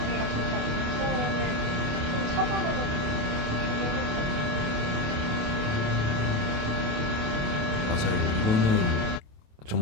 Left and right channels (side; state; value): left; late; 28 ms